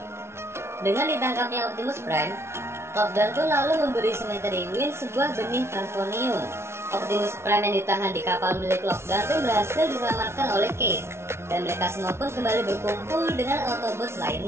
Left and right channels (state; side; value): late; left; 0.13 ms